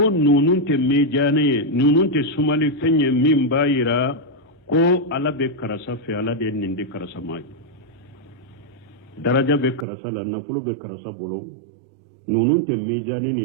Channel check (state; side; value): drops out; left; at 9.9 s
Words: nunun te mejane nunun te sumali fenye min bayira ko ala be karasa fe ala de nindi karasa mai daraja be karasa la nafulo be karasa bolo nunun te mejane